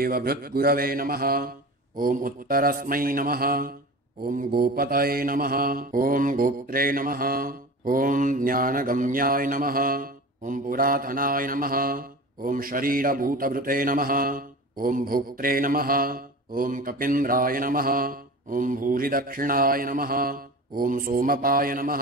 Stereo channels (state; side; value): normal; both; correlation 0.34